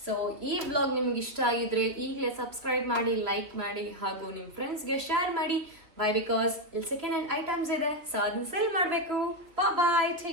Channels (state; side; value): late; left; 3.2 ms